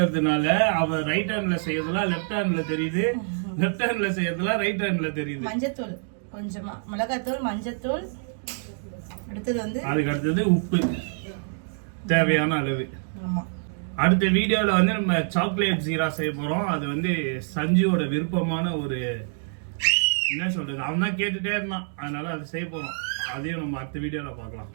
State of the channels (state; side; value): silent; left; digital silence